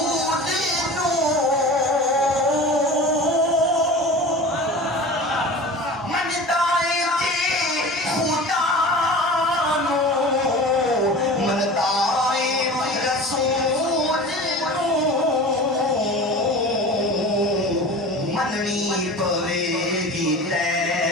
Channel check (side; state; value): both; normal; correlation 0.36